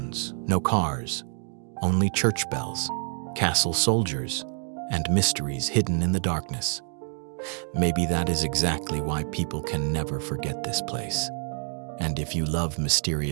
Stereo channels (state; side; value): silent; left; 58 dB below the other